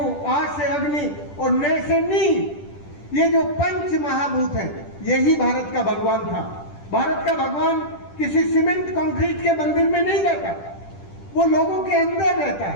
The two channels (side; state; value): right; late; 10 ms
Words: आ से अग्नि और ने से नीर। ये जो पंच महाभूत है, यही भारत का भगवान था। भारत का भगवान किसी सीमेंट कंक्रीट के मंदिर में नहीं रहता, वो लोगों के अंदर रहता